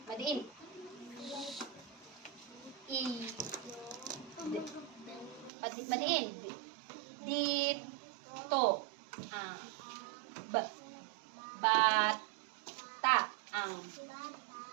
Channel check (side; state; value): left; drops out; at 5.5 s